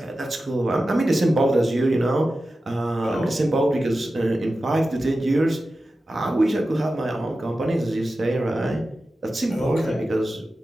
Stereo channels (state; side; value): normal; both; correlation 0.93